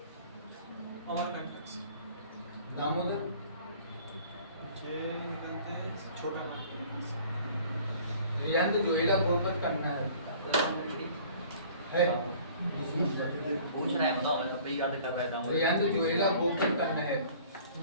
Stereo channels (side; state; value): both; inverted; correlation -0.50